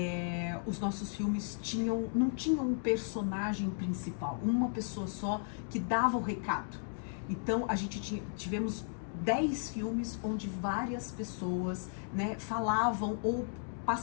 os nossos filmes não tinham um personagem principal, uma pessoa só que dava o recado. Então, a gente tivemos 10 filmes onde várias pessoas, né, falavam ou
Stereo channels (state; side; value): silent; right; digital silence